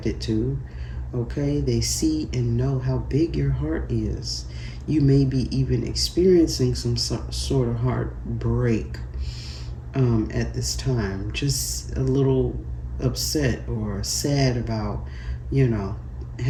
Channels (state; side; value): identical; both; correlation 1.00